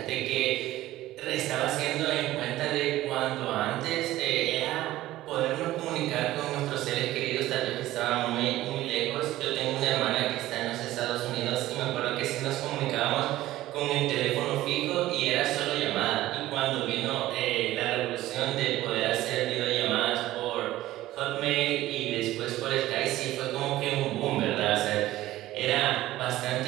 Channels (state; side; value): quieter; left; 15.6 dB